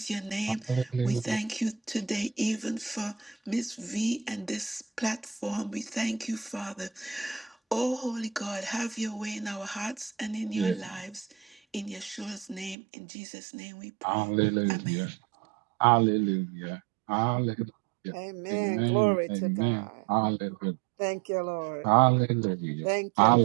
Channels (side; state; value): left; drops out; at 12.8 s